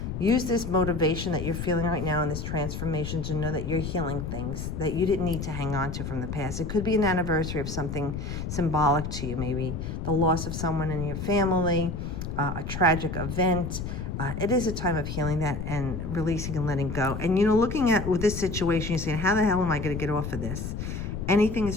Use this motivation that you're feeling right now in this transformation to know that you're healing things that you didn't need to hang on to from the past. It could be an anniversary of something symbolic to you, maybe the loss of someone in your family, a tragic event. It is a time of healing that and releasing and letting go. And, you know, looking at with this situation, you're saying, how the hell am I going to get off of this? Anything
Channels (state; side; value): noise; left; rumble, 5 dB below the sound